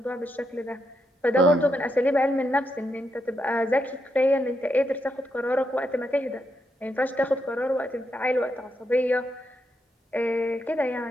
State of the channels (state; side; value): normal; both; correlation 0.81